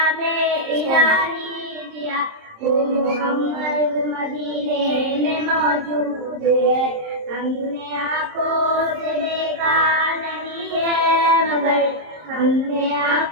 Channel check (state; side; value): late; left; 26 ms